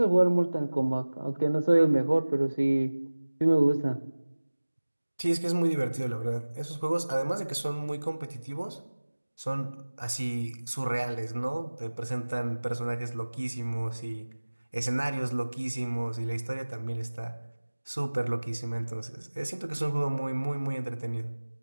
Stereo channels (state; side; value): inverted; both; correlation -1.00